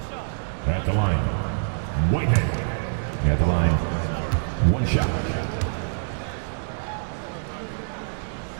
At the line, Whitehead. At the line, 1 shot.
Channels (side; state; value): left; silent; digital silence